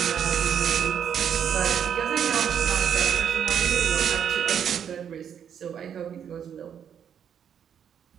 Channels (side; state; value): left; quieter; 8.4 dB